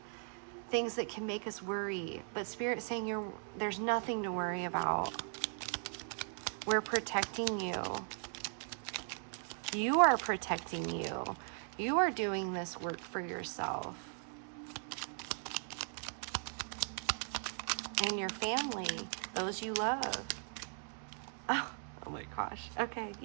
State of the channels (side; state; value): left; silent; 52 dB below the other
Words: things that can make us worry. But Spirit's saying there's nothing to worry about. We're protecting you. You are protecting you. You are doing this work for yourself and your family, those you love. Oh my gosh. Okay,